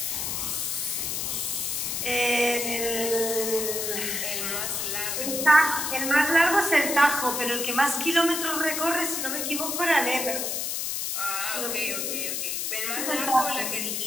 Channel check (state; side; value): noise; left; hiss, 1 dB below the sound